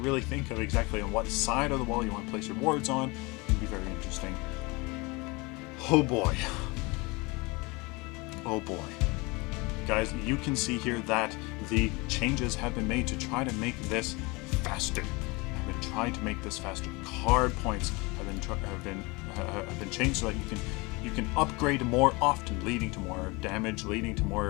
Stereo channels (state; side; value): quieter; right; 25.8 dB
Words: think of exactly on what side of the wall you want to place your wards on. It'll be very interesting. Oh boy. Oh boy. Guys, you can see here that the changes have been made to try to make this faster. I've been trying to make this faster. Card points have been changed so that you can upgrade more often, leading to more damage, leading to